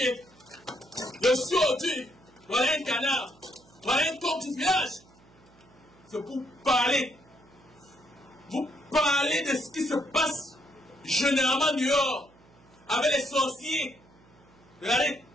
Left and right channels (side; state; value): right; noise; hum, 28 dB below the sound